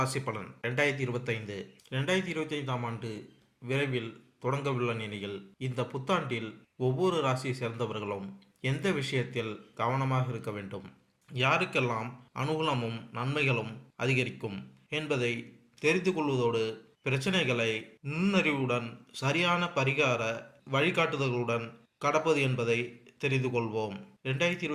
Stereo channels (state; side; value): identical; both; correlation 1.00